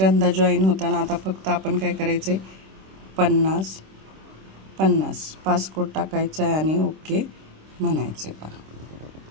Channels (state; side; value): late; left; 26 ms